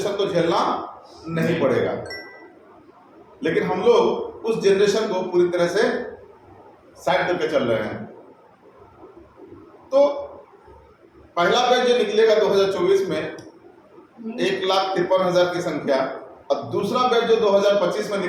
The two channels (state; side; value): identical; both; correlation 1.00